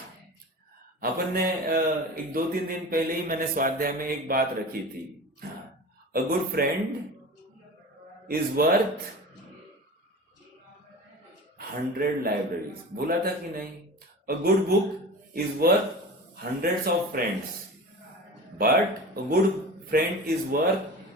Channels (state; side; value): normal; both; correlation 0.34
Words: अपन ने एक 2-3 दिन पहले ही मैंने स्वाध्याय में एक बात रखी थी, a good friend is worth 100 libraries, बोला था कि नहीं? A good book is worth hundreds of friends, but a good friend is worth